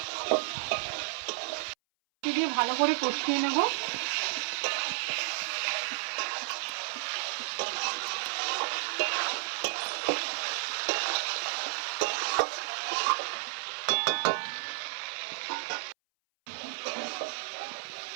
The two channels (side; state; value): left; silent; 56 dB below the other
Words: দিয়ে ভালো করে কষিয়ে নেব।